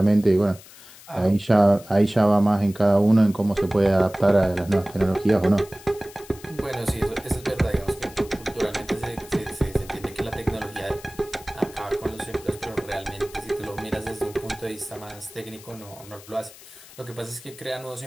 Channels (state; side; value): noise; left; hiss, 20 dB below the sound